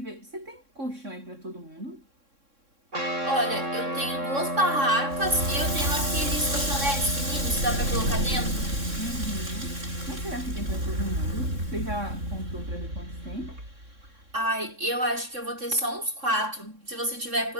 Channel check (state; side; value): late; left; 3.6 ms